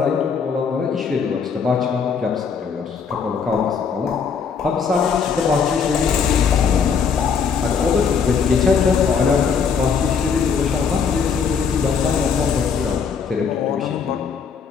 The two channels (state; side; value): quieter; right; 6.1 dB